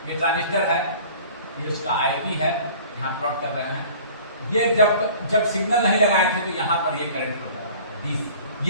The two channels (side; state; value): both; inverted; correlation -0.47